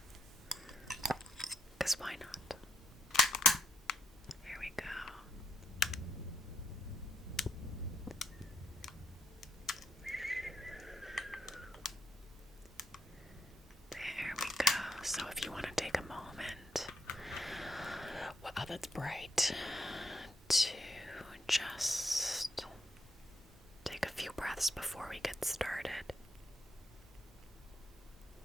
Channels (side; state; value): both; normal; correlation 0.75